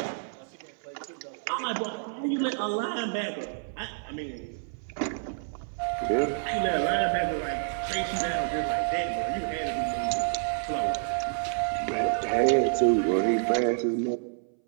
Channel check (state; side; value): silent; left; 59 dB below the other